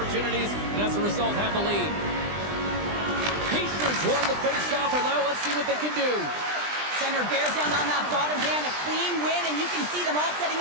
and as a result have the lead. Hischier's won the face-off, and now let's see what they can do. Center bears down on that bottom hand, a clean win, and you can see them all setting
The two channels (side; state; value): left; late; 20 ms